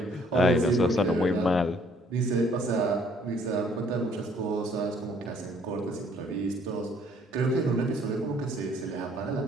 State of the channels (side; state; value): both; normal; correlation 0.62